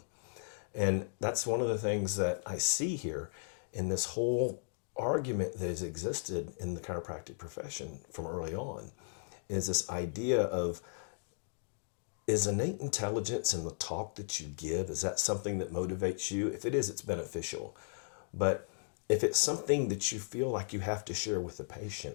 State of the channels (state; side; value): silent; right; digital silence